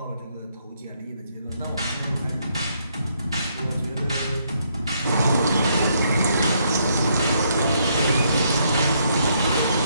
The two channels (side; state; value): both; inverted; correlation -0.73